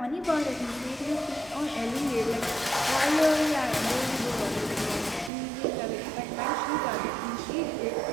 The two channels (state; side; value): drops out; left; at 5.3 s